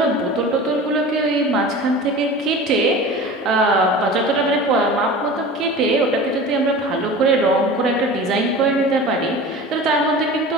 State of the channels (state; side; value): normal; both; correlation 0.36